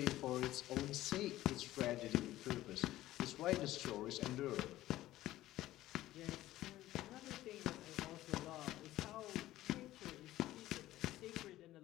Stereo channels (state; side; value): quieter; right; 15.3 dB